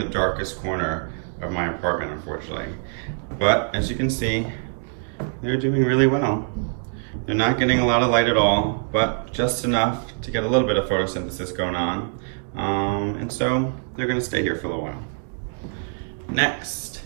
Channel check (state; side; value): silent; left; 63 dB below the other